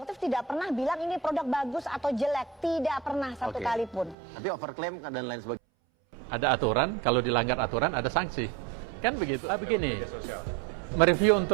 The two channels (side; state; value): left; drops out; at 4.2 s